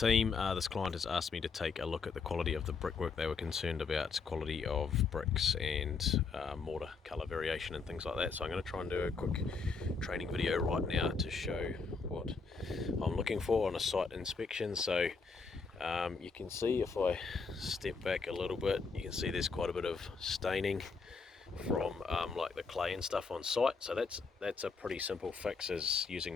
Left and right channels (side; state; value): right; quieter; 4.8 dB